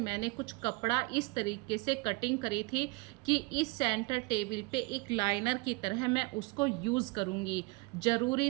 कुछ कपड़ा इस तरीके से कटिंग करी थी कि इस सेंटर टेबल पे एक लाइनर की तरह मैं उसको यूज़ करूँगी।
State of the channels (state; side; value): quieter; left; 25.2 dB